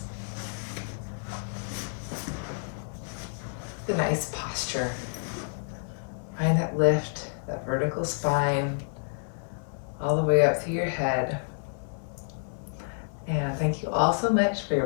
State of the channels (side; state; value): right; silent; digital silence